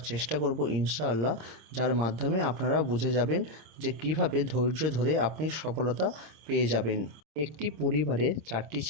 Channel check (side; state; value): left; late; 26 ms